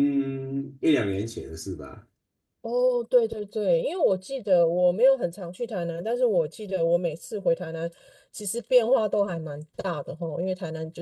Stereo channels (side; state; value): both; identical; correlation 1.00